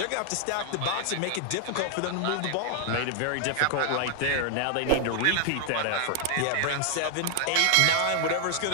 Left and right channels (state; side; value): different; both; correlation 0.00